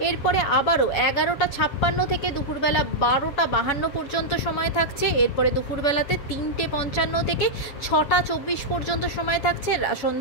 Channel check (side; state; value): right; late; 7.1 ms